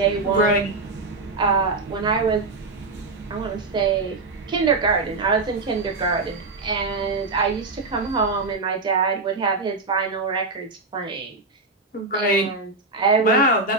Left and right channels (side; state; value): left; quieter; 3.5 dB